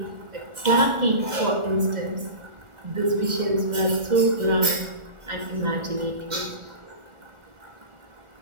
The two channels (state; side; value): late; left; 2.0 ms